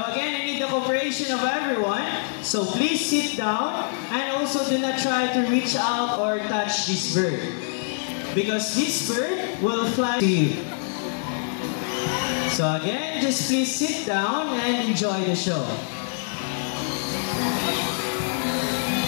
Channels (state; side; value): silent; right; 61 dB below the other